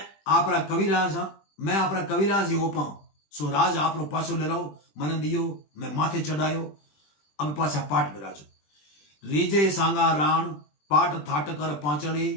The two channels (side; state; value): right; late; 20 ms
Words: आपरा कविराज हाँ, मैं आपरा कविराज ही ओपा, सो राज आपरो पाछो ले लो, मन दियो मैं माथे चढ़ायो, अब पाछा पाट बिराजो। रीजे सांगा राण पाट थाट कर पांचली,